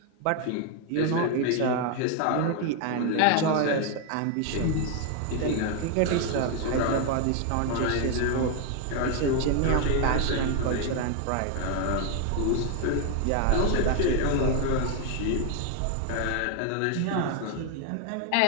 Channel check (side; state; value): both; different; correlation 0.01